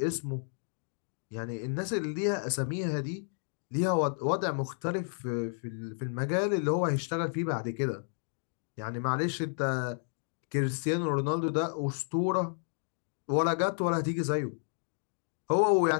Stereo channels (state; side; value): silent; right; digital silence